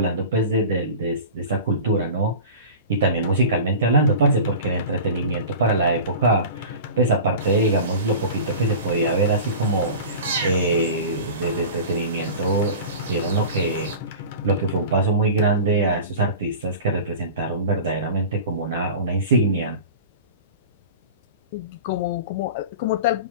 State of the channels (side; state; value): both; inverted; correlation -0.35